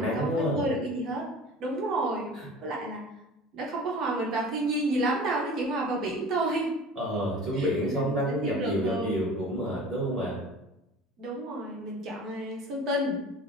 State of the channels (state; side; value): normal; both; correlation 0.41